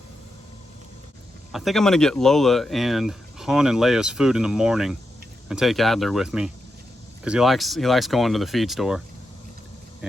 I think I'm gonna get Lola and Han and Leia's food in the morning and take Adler with me because he likes going to the feed store.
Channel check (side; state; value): both; normal; correlation 0.87